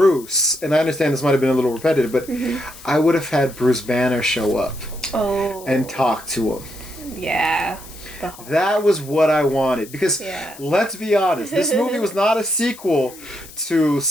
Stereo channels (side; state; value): left; noise; hiss, 18 dB below the sound